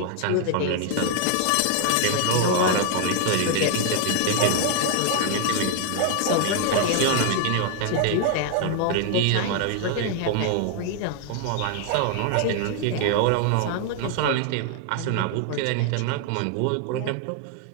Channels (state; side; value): different; both; correlation 0.00